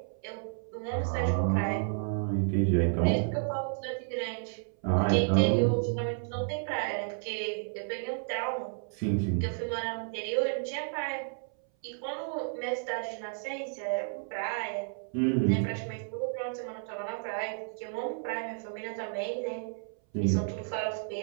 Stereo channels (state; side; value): silent; left; 57 dB below the other